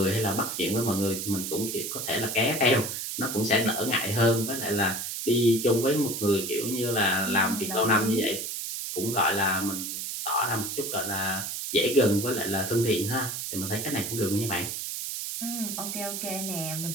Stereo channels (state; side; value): noise; right; hiss, 4 dB below the sound